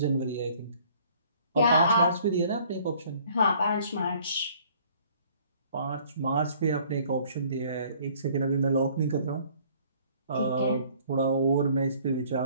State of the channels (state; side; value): inverted; both; correlation -0.57